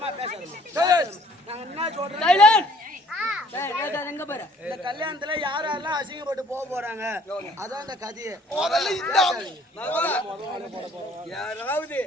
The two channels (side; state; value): both; normal; correlation 0.58